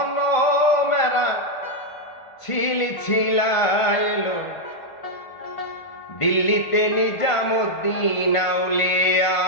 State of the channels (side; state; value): right; late; 1.5 ms